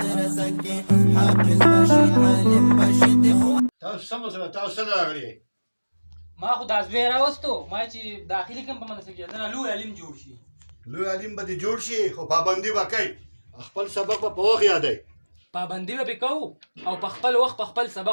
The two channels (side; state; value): both; inverted; correlation -1.00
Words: کې حافظ بشي عالم بشي دیوبند. تاسو سم سره تاسو سره راغلي ما خو دا زوی راوستو ما چې داخلي کوم په مدرسه کې دنه لوی علم جوړ شي. لوی علم به دې جوړ شي خو پابندي به کوي خپل سبق به په وخت یادوي. پابندي به پې کوو او په خپل وخت په خپل